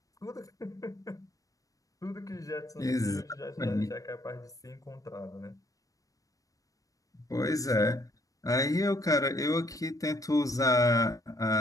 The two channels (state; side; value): late; right; 0.16 ms